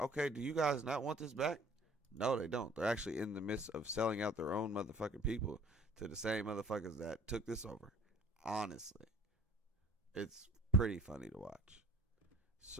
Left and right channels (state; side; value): normal; both; correlation 0.51